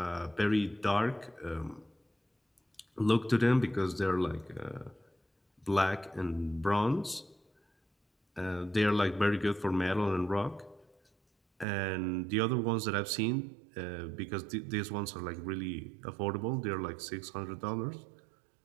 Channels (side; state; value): left; drops out; at 11.7 s